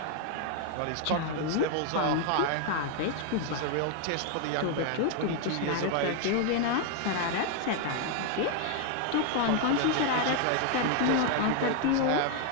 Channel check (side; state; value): both; different; correlation 0.00